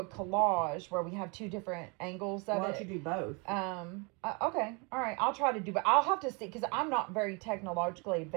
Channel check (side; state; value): left; quieter; 31.3 dB